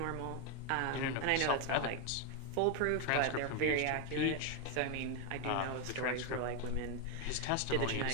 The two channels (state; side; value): different; both; correlation 0.01